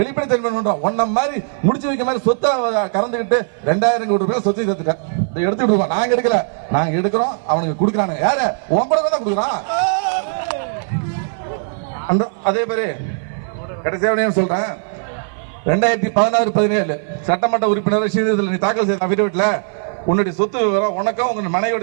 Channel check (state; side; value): silent; left; 57 dB below the other